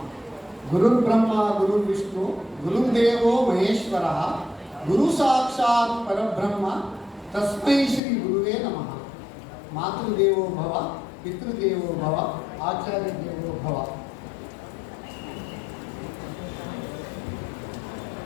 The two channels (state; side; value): drops out; right; at 8.0 s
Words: गुरुर्ब्रह्मा गुरुर्विष्णु गुरुर्देवो महेश्वरः गुरु साक्षात् परब्रह्म तस्मै श्री गुरुवे नमः। मातृदेवो भव पितृदेवो भव आचार्य देवो भव।